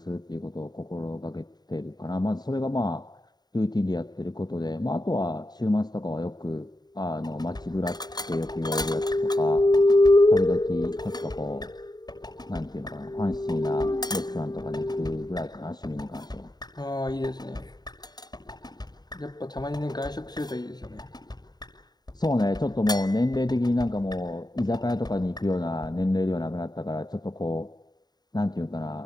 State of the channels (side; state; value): right; late; 0.20 ms